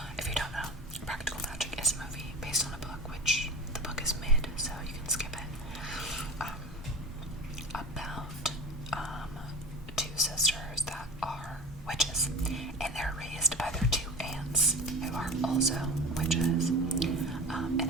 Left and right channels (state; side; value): normal; both; correlation 0.32